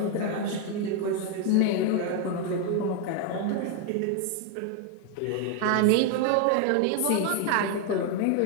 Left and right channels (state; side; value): different; both; correlation 0.00